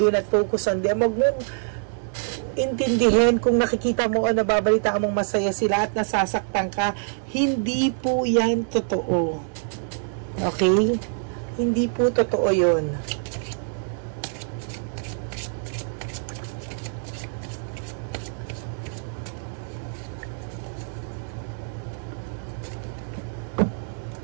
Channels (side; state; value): left; silent; digital silence